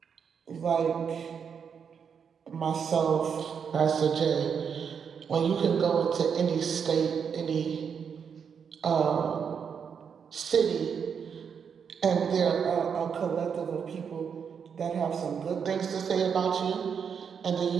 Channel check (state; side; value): quieter; left; 6.9 dB